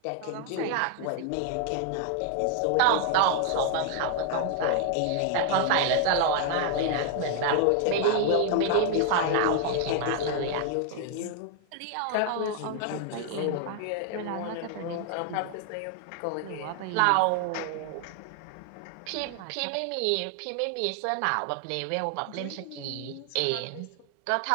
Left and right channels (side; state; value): both; different; correlation 0.00